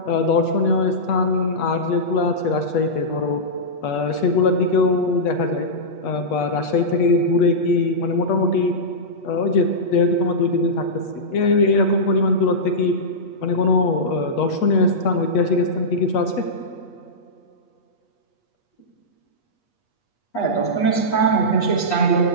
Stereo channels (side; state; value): right; late; 8.3 ms